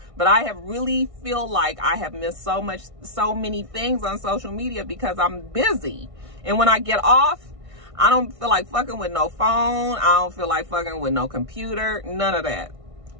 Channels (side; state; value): left; late; 1.6 ms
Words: But I have really feel like I have missed so many things on social media because I'm busy. And when I get off, I don't feel like fucking with no phone. I don't feel like fucking with no computer, none of that.